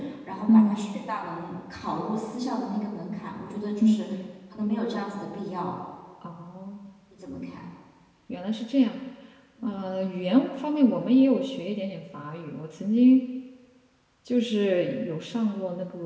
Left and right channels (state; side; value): identical; both; correlation 1.00